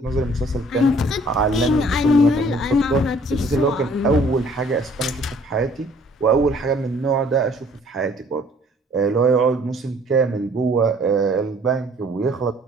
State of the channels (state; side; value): normal; both; correlation 0.57